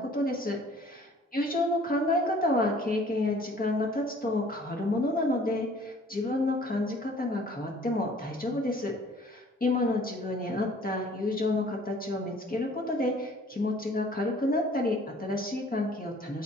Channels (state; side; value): normal; both; correlation 0.54